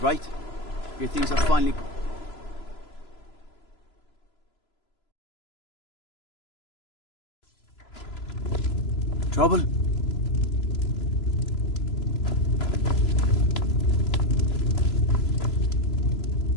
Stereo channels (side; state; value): right; late; 3.0 ms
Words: Your things are finally... Trouble?